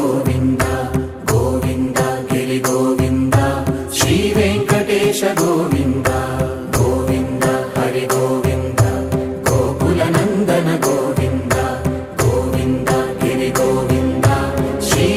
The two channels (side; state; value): both; identical; correlation 1.00